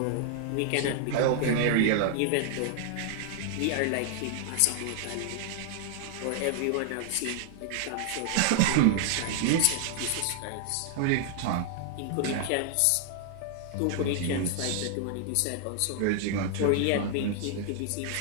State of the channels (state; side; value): different; both; correlation 0.00